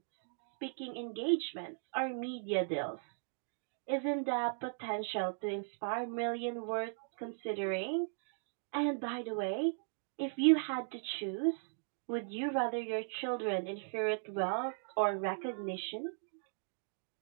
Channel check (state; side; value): silent; left; digital silence